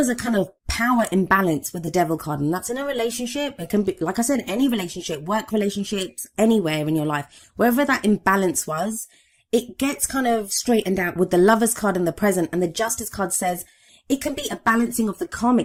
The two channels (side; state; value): both; identical; correlation 1.00